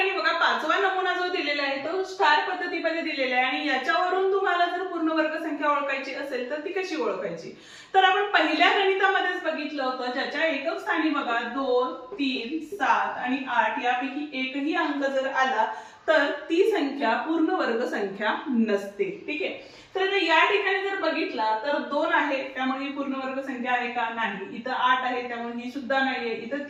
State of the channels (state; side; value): identical; both; correlation 1.00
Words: बघा पाचवा नमुना जो दिलेला आहे तो स्टार पद्धतीमध्ये दिलेला आहे आणि याच्यावरून तुम्हाला जर पूर्ण वर्ग संख्या ओळखायची असेल तर ती कशी ओळखायची, तर आपण पहिल्या गणितामध्येच बघितलं होतं, ज्याच्या एकक स्थानी बघा 2, 3, 7 आणि 8 यापैकी एकही अंक जर आला तर ती संख्या पूर्ण वर्ग संख्या नसते. ठीक आहे, तर या ठिकाणी जर बघितला तर 2 आहे त्यामुळे ही पूर्ण वर्ग संख्या आहे का, नाही. इथं 8 आहे त्यामुळे ही सुद्धा नाहीये. इथं